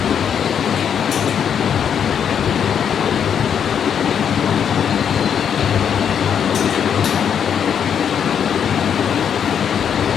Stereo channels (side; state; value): right; quieter; 8.1 dB